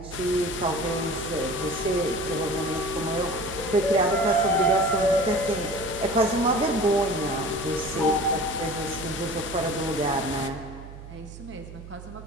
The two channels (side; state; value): right; noise; hum, 14 dB below the sound